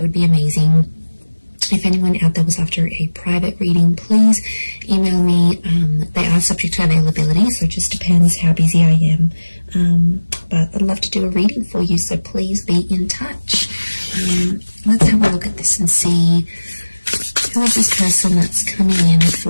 would be amazing. If anyone out there was after a private reading, please email me. They are subject to availability, so it just depends how busy I am. But I'd love to do a reading for you, so please be in touch. Let's have a look at this and see who is this person that's coming in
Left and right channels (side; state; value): both; inverted; correlation -1.00